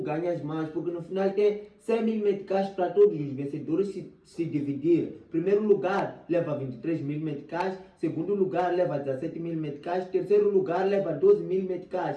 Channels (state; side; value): identical; both; correlation 1.00